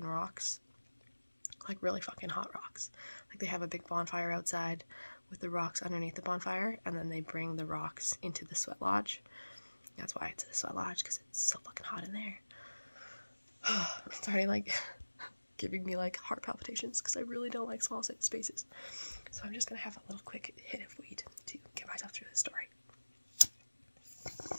rocks, like really fucking hot rocks. Like they have a big bonfire outside with the rocks underneath the bonfire, and then they bring the rocks into the sweat lodge. That's why it's a sweat lodge, because it's so fucking hot in there. It's already like giving me like heart palpitations because I really don't like small spaces. So I'm just gonna have a little quick hit of weed to get myself through the story.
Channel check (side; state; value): both; inverted; correlation -1.00